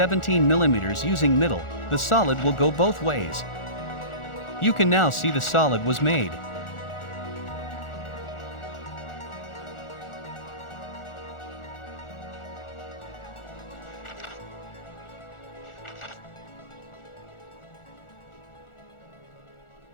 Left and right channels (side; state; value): right; late; 1.4 ms